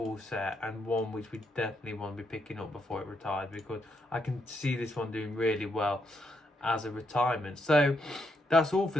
set, and one which we definitely want to be picking up before it retires, because I can see this one doing really well as a retirement. So that's all for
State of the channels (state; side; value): normal; both; correlation 0.78